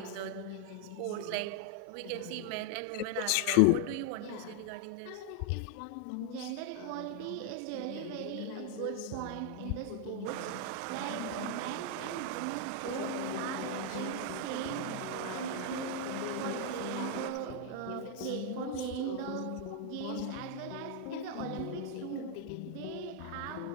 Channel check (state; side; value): different; both; correlation 0.00